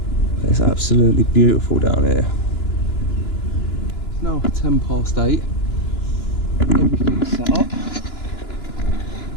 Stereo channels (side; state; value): right; late; 2.9 ms